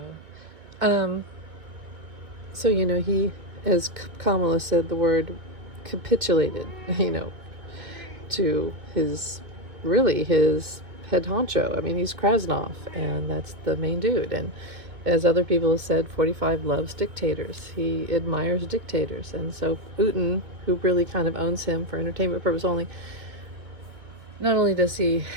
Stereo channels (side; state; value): left; late; 2.3 ms